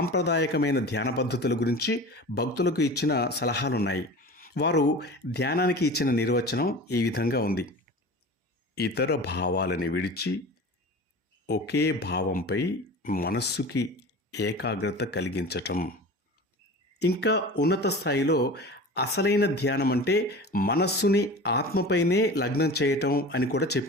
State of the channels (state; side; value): normal; both; correlation 0.35